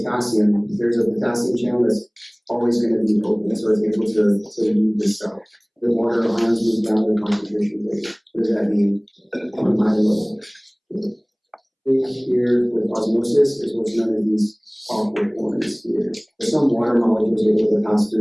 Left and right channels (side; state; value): both; identical; correlation 1.00